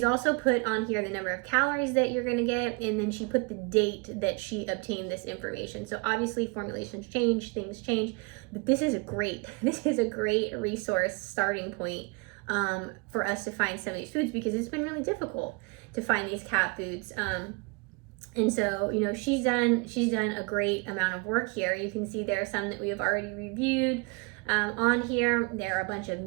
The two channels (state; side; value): quieter; left; 30.0 dB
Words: also put on here the number of calories that you're gonna get, and then she put the date that she obtained this information. So obviously formulations change, things change, but this is a great resource starting point for us to find some of these foods, because it's been really difficult to find these cat foods. And so, she's done a great amount of work here. You can see there are some that we have already reviewed on here. There are a bunch of